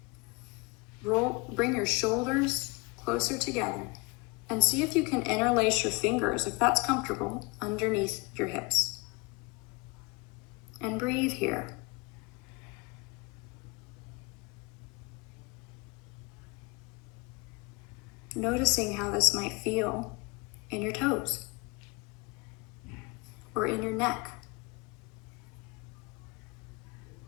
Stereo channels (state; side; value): quieter; right; 27.1 dB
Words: Bring your shoulders closer together and see if you can interlace your fingers, if that's comfortable, underneath your hips. And breathe here. Noticing how this might feel in your toes or in your neck.